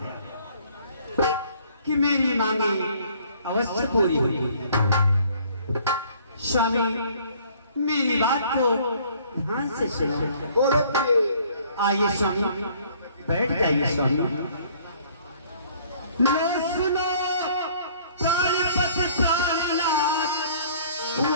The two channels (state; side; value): inverted; both; correlation -0.57